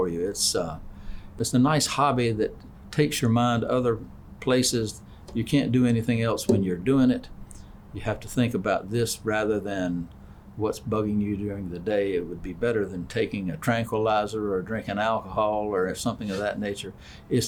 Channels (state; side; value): identical; both; correlation 1.00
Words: you. It's a nice hobby that takes your mind other places. You can't do anything else when you're doing it. You have to think about this rather than what's bugging you during the day. It would be better than taking a tranquilizer or drinking alcohol or something of that nature.